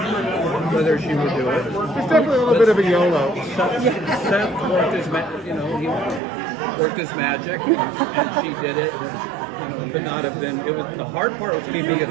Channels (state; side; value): drops out; left; at 6.2 s